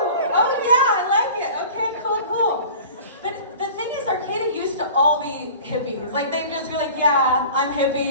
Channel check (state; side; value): inverted; both; correlation -0.41